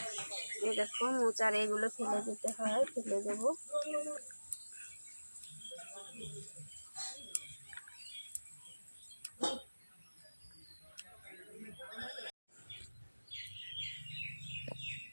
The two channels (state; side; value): inverted; both; correlation -1.00